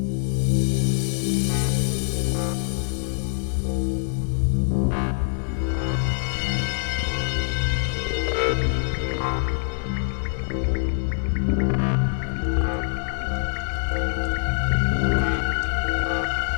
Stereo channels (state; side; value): silent; right; digital silence